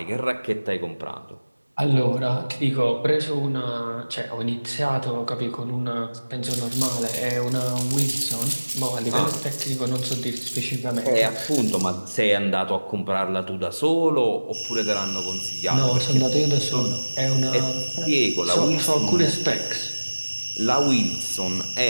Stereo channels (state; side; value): inverted; both; correlation -1.00